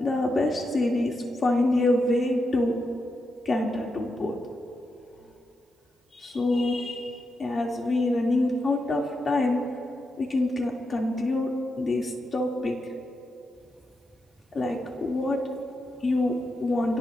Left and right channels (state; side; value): normal; both; correlation 0.86